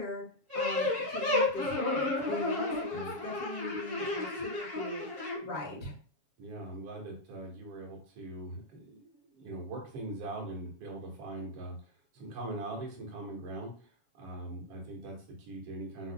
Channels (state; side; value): late; left; 7.3 ms